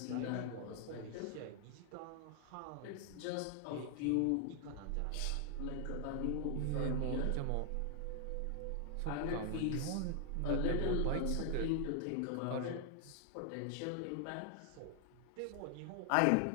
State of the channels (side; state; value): both; different; correlation 0.00